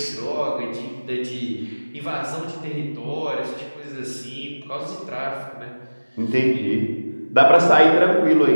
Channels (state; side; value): inverted; both; correlation -1.00